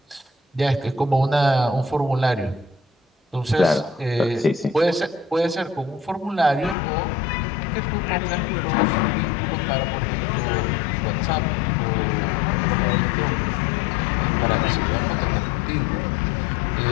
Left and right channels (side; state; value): right; drops out; at 6.8 s